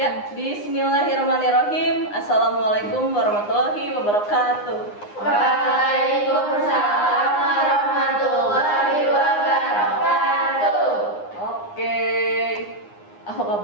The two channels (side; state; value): right; late; 9.7 ms